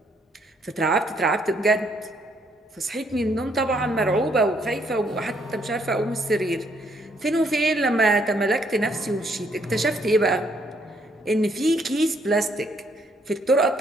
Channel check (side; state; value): both; normal; correlation 0.70